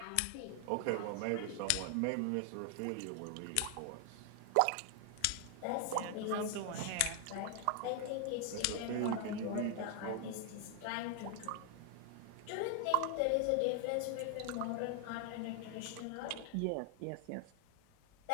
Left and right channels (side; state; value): both; different; correlation 0.00